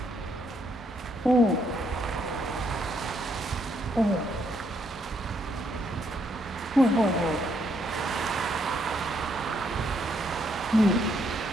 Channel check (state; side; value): normal; both; correlation 0.73